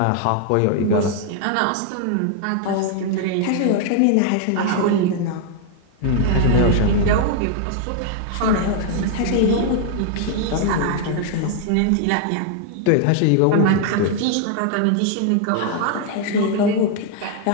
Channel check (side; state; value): both; different; correlation 0.00